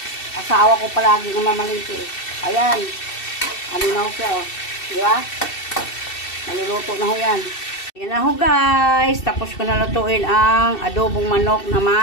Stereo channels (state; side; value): late; right; 2.7 ms